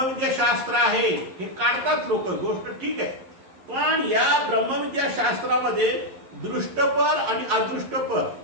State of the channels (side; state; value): left; late; 11 ms